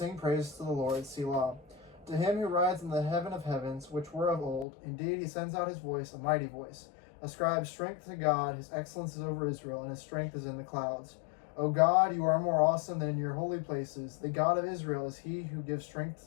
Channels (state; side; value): drops out; right; at 4.7 s